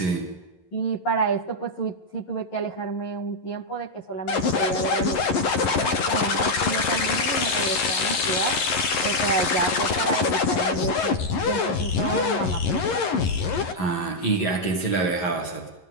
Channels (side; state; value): right; late; 11 ms